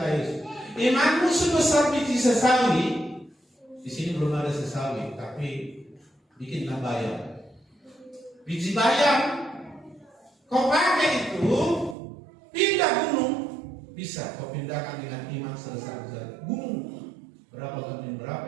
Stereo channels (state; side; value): drops out; left; at 12.0 s